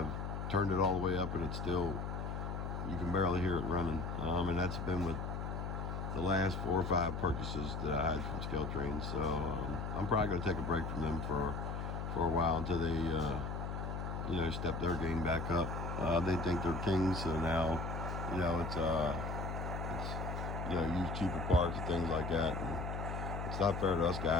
turned it all the way up, and it's still, you can barely hear it running. And that's been with the last 4 or 5 purchases that I had from scale trains. So I'm probably going to take a break from them for a while until they step their game back up. They think they're kings, so now it's use cheaper parts and things like that. And it's not fair to us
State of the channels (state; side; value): noise; left; hum, 4 dB below the sound